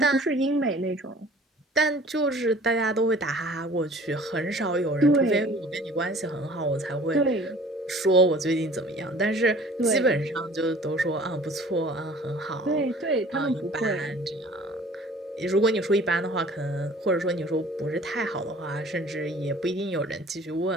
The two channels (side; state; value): both; normal; correlation 0.49